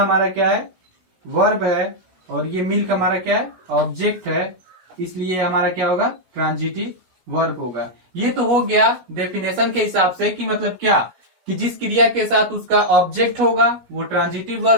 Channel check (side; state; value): left; late; 17 ms